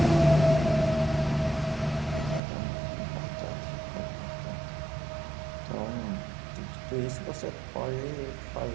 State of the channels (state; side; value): drops out; left; at 2.4 s